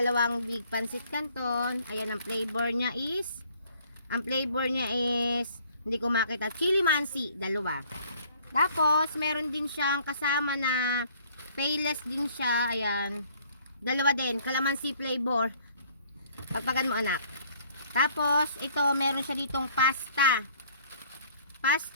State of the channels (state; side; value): inverted; both; correlation -0.58